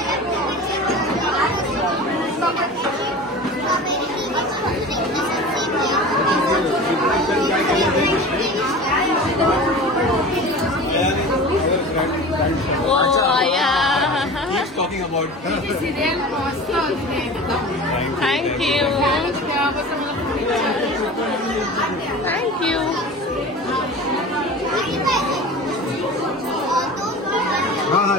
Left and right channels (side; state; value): both; normal; correlation 0.36